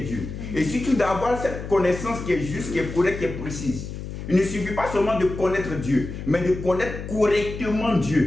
Et surtout d'avoir cette connaissance qui est juste, qui est correcte, qui est précise. Il ne suffit pas seulement de connaître Dieu, mais de connaître correctement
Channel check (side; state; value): left; noise; hum, 8 dB below the sound